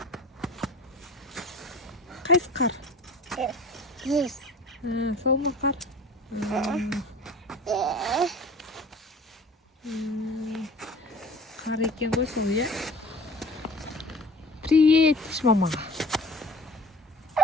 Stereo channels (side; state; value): both; normal; correlation 0.43